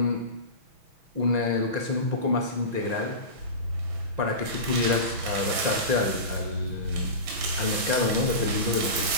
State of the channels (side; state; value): left; late; 6.2 ms